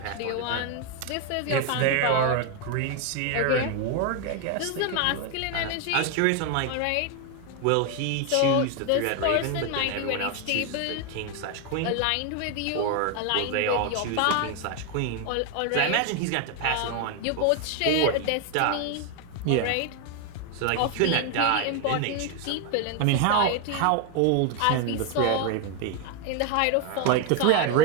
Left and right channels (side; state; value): both; different; correlation 0.01